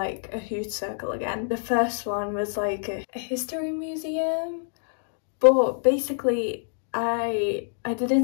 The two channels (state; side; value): silent; right; digital silence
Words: a huge circle again. The first one was like a history museum, but basically I